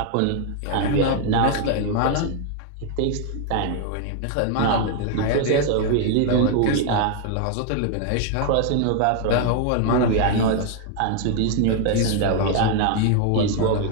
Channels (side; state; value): both; different; correlation 0.00